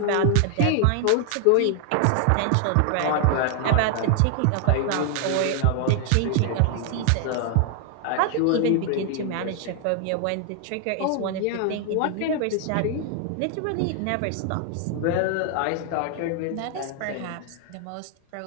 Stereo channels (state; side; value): different; both; correlation 0.00